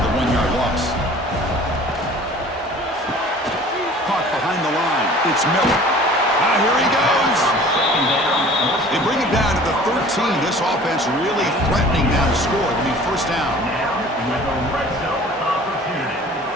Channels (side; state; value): both; normal; correlation 0.46